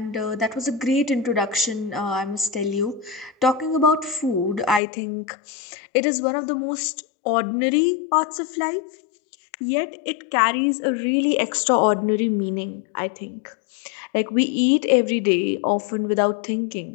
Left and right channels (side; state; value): right; drops out; at 4.8 s